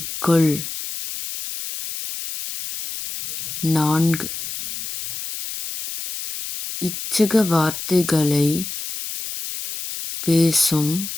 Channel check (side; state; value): left; noise; hiss, 7 dB below the sound